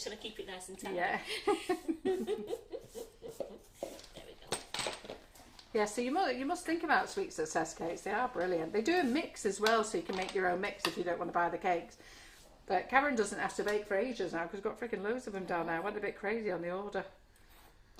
trying to keep it nice and tight. Yeah. There we go. Yeah, so you must think about sweet success cakes. They are brilliant. They do a mix as well, so you can make your own mix if you don't want to buy the cakes. But Karen doesn't have to bake for ages now because we've got freaking loads of them down there. I went a bit crazy on the order.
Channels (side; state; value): both; identical; correlation 1.00